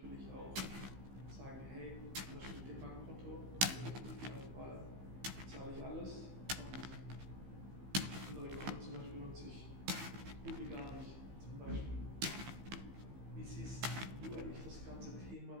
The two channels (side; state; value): left; late; 15 ms